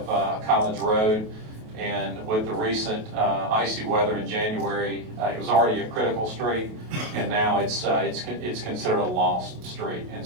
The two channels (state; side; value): late; left; 28 ms